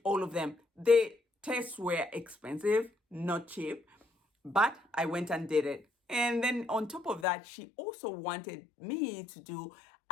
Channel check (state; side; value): drops out; right; at 7.2 s